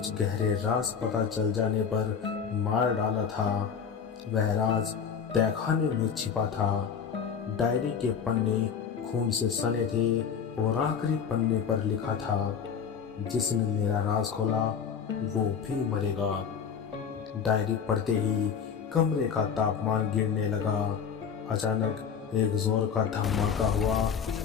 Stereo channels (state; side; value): quieter; right; 7.0 dB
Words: गहरे राज पता चल जाने पर मार डाला था। वह राज तहखाने में छिपा था। डायरी के पन्ने खून से सने थे और आखिरी पन्ने पर लिखा था, जिसने मेरा राज खोला वो भी मरेगा। डायरी पढ़ते ही कमरे का तापमान गिरने लगा। अचानक एक जोर का धमाका हुआ